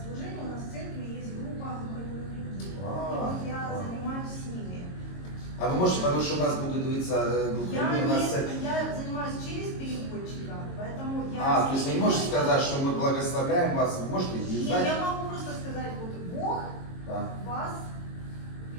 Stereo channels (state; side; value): late; right; 22 ms